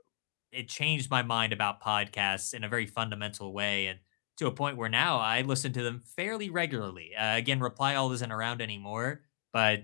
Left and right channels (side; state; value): right; silent; digital silence